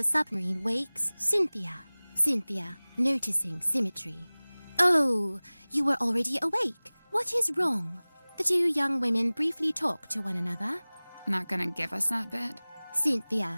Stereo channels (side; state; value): both; inverted; correlation -1.00